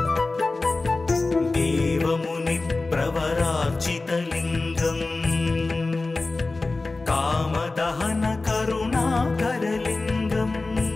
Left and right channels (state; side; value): quieter; right; 3.4 dB